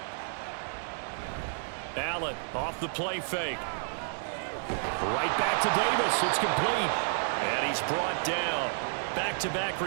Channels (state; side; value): silent; left; 57 dB below the other